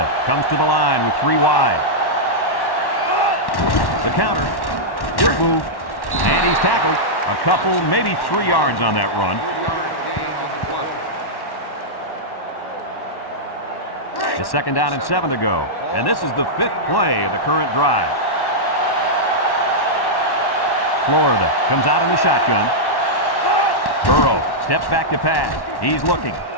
comes to the line with 3 wide. The counter. Good move. And he's tackled. A couple, maybe 3 yards on that run. 3-yard gain on the play. It's second down and 7 to go. And this is the 5th play of the current drive. Florida comes out in the shotgun. Burrow steps back to pass. He's looking.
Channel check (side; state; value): right; late; 1.1 ms